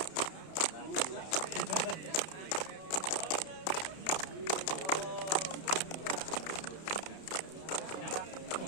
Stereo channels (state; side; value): late; right; 31 ms